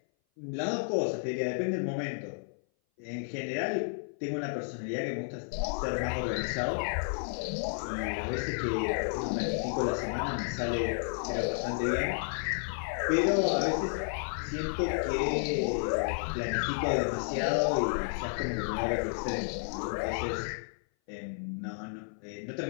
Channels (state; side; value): silent; right; 56 dB below the other